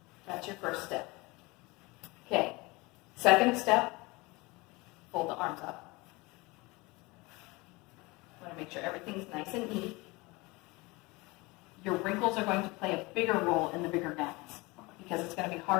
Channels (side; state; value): right; quieter; 24.1 dB